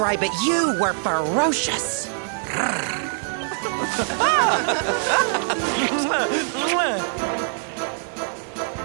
it. You were ferocious!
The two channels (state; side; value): silent; left; 63 dB below the other